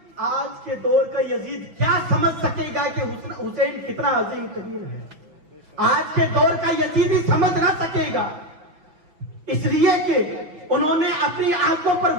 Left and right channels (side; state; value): left; late; 5.9 ms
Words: آج کے دور کا یزید کیا سمجھ سکے گا کہ حسین کتنا عظیم ترین ہے؟ آج کے دور کا یزید ہی سمجھ نہ سکے گا، اس لیے کہ انہوں نے اپنی آنکھوں پر